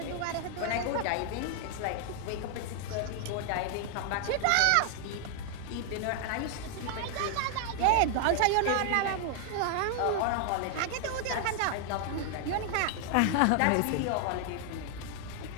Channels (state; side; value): different; both; correlation 0.00